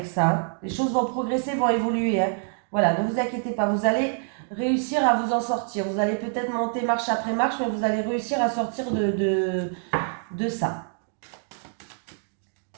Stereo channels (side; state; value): left; silent; 60 dB below the other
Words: ça. Hein. Les choses vont progresser, vont évoluer. Hein. Voilà, ne vous inquiétez pas, vous allez réussir à vous en sortir. Vous allez peut-être monter marche après marche, mais vous allez réussir à sortir de ça.